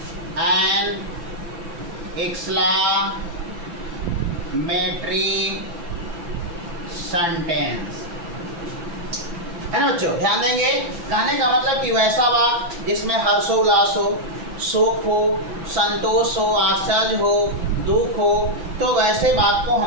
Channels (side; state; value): left; late; 5.9 ms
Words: an exclamatory sentence, है ना बच्चों। ध्यान देंगे, कहने का मतलब कि वैसा वाक्य जिसमें हर्षोल्लास हो, सुख हो, संतोष हो, आश्चर्य हो, दुख हो, तो वैसे बात को